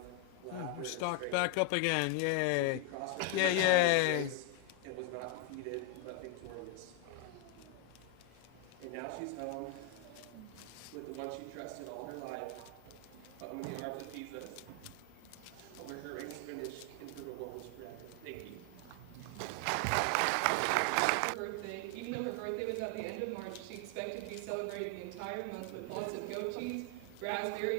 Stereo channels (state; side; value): different; both; correlation 0.00